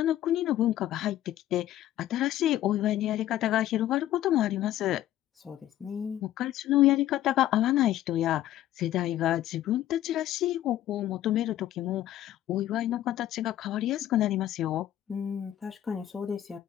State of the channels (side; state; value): right; quieter; 13.0 dB